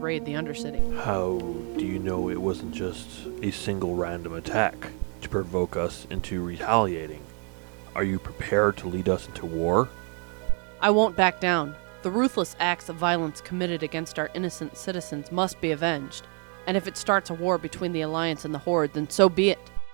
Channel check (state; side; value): quieter; left; 38.8 dB